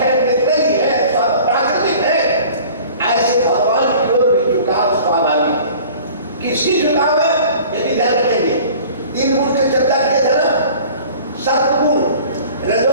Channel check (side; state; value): both; inverted; correlation -0.46